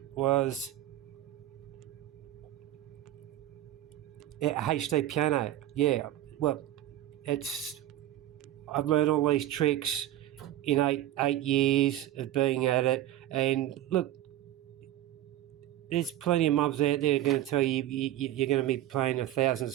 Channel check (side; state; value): left; quieter; 13.6 dB